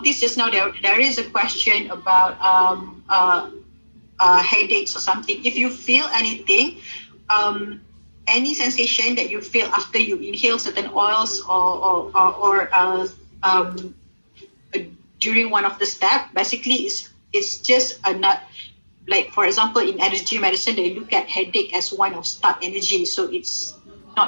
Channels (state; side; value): inverted; both; correlation -1.00